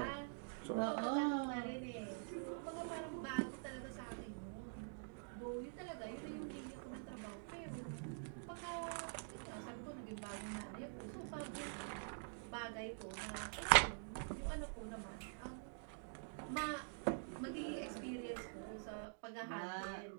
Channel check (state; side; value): silent; left; digital silence